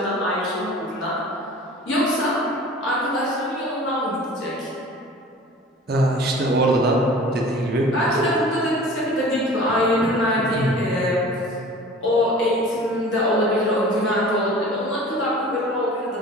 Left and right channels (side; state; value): both; normal; correlation 0.43